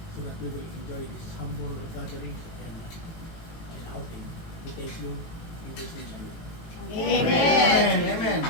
so that we will enjoy this humble gatherings and outing. We thank you in Jesus' name. Amen. Amen.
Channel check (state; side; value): late; right; 18 ms